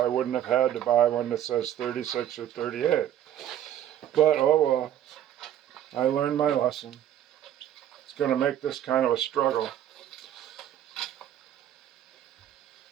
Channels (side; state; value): left; quieter; 11.0 dB